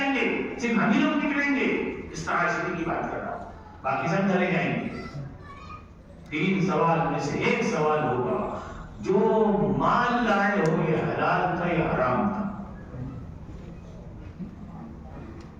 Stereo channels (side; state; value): both; identical; correlation 1.00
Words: گے, صرف ہم ہی لوگ نکلیں گے. اس طرح کی بات کر رہا ہوں, باقی سب چلے جائیں گے. 3 سوال میں سے ایک سوال ہوگا, جو مال لائے ہو یہ حلال تھا یا حرام تھا.